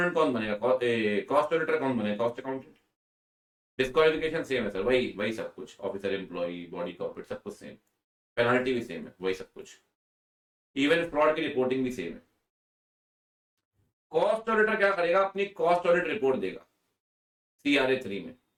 कौन बनेगा, कॉस्ट ऑडिटर कौन बनेगा, कॉस्ट अकाउंटेंट। डिस्क्वालिफिकेशन सेम है सर, वही सब कुछ, ऑफिसर, एम्प्लॉई, बॉडी कॉर्पोरेट, सब कुछ सेम, पेनल्टी भी सेम है, वही सब कुछ, इवन फ्रॉड की रिपोर्टिंग भी सेम है। कॉस्ट ऑडिटर क्या करेगा, अपनी कॉस्ट ऑडिट रिपोर्ट देगा CRA 3 में।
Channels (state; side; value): identical; both; correlation 1.00